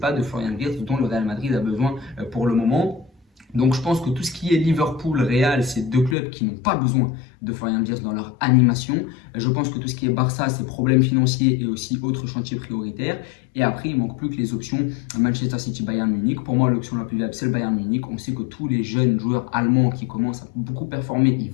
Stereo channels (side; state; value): right; drops out; at 6.2 s